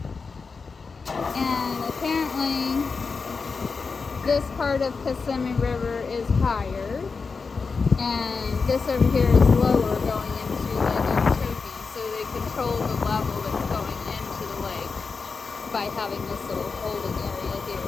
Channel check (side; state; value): right; quieter; 4.8 dB